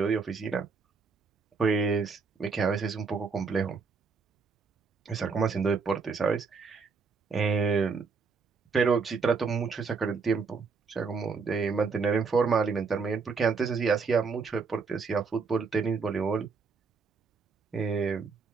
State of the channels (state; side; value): quieter; left; 5.0 dB